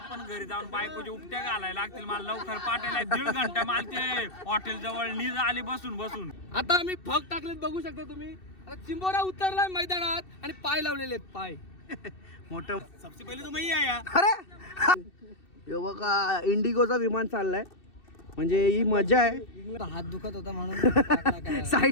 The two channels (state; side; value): late; right; 2.7 ms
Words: पण घरी जाऊन बायकोची उपट्या घालायला लागतील मला लवकर पाठायला 1.5 घंटा मला ते हॉटेल जवळ नीज आली बसून बसून. आता आम्ही फग टाकलेत बघू शकता तुम्ही. आता चिंबोरा उतरलाय मैदानात आणि पाय लावलेले आहेत पाय मोठं. सबसे पहिले तुम्ही या अरे हे बघा इंडिगोचा विमान चाललाय, म्हणजे ही मजा आहे. हात दुखत होता म्हणून